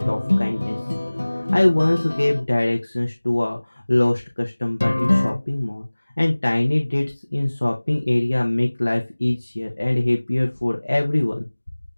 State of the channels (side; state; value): both; inverted; correlation -1.00